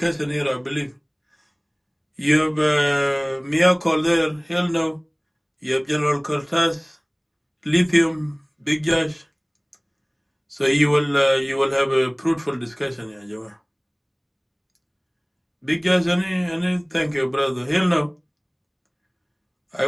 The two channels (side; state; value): both; identical; correlation 1.00